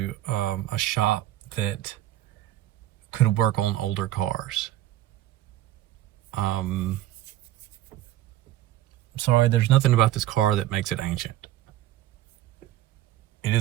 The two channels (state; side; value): quieter; left; 13.9 dB